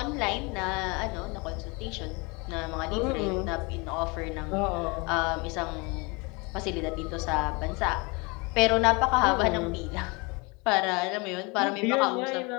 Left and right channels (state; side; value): quieter; right; 28.4 dB